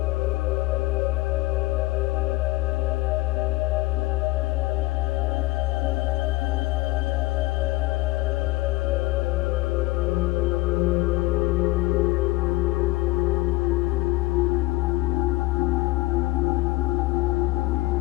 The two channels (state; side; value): quieter; right; 20.8 dB